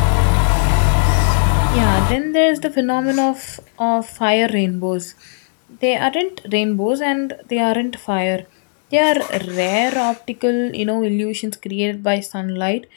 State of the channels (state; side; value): silent; right; digital silence